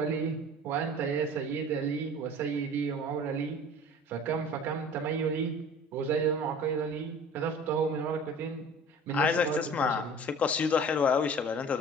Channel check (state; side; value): normal; both; correlation 0.44